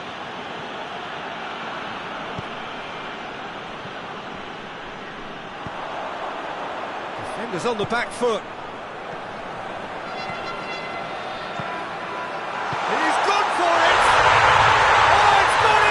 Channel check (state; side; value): identical; both; correlation 1.00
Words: Defenders on the back foot. He's gone for it!